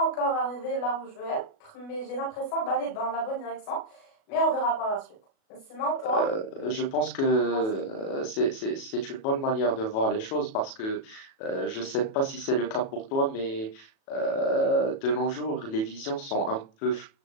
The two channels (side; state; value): right; late; 37 ms